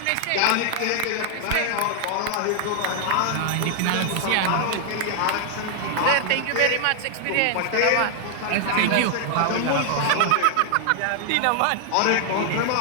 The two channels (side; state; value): both; different; correlation 0.00